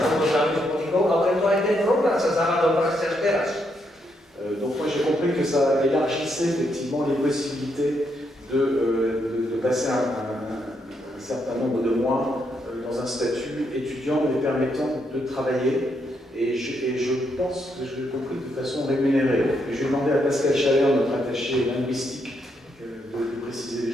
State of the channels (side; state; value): both; normal; correlation 0.78